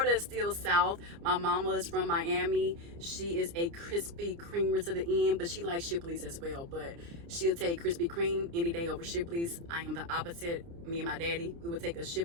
is still south. My mama is from Miami. She is a Krispy Kremer to the end, but she likes Shipley's as well. But she'll take Krispy Kreme any day over Shipley's. I am the opposite. Me and my daddy, we would take a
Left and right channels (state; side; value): late; left; 29 ms